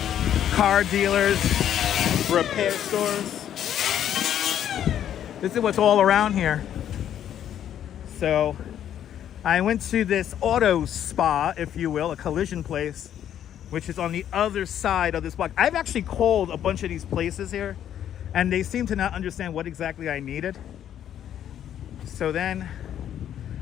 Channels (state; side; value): quieter; right; 10.3 dB